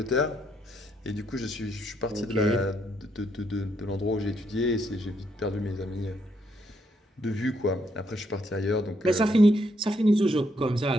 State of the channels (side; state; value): both; normal; correlation 0.75